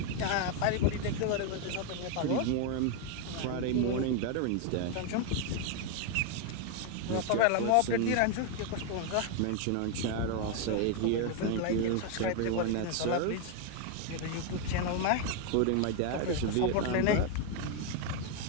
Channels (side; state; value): both; different; correlation 0.01